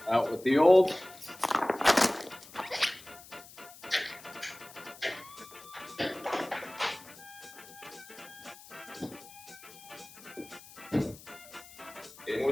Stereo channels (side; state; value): left; noise; hiss, 19 dB below the sound